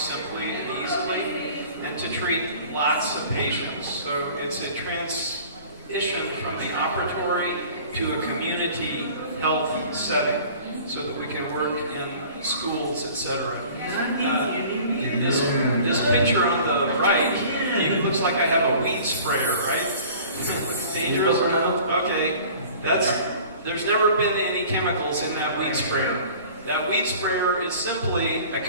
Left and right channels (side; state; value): both; inverted; correlation -0.46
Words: and easily, and to treat lots of patients. So it's a transition from the operatory to a community health setting, so that we can work in schools, etc. This picture on the right, it looks like I have a weed sprayer, right? It's dangerous. Okay, there's never been any chemicals in that weed sprayer. That weed sprayer is simply a